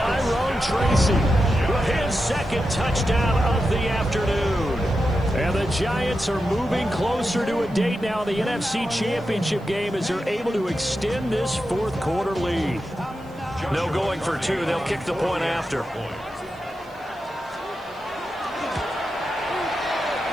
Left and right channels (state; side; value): noise; right; hiss, 30 dB below the sound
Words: Tracy with his 2nd touchdown of the afternoon. And the Giants are moving closer to a date now in the NFC Championship game as they're able to extend this 4th quarter lead. No going for 2. They'll kick the point after. Point